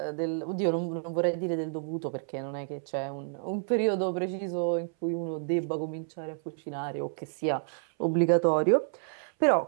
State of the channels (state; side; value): silent; left; 58 dB below the other